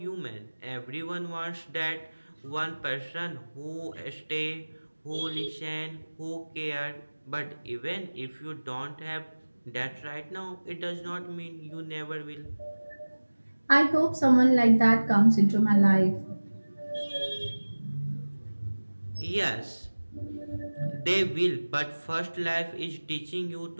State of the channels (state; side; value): inverted; both; correlation -1.00